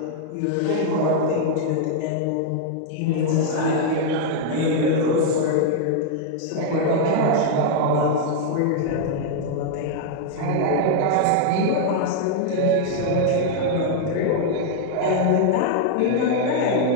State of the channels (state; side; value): different; both; correlation -0.01